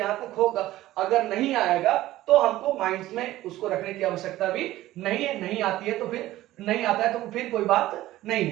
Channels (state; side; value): quieter; left; 15.5 dB